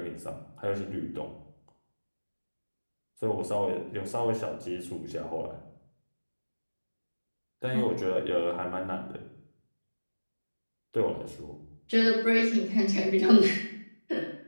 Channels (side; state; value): both; inverted; correlation -1.00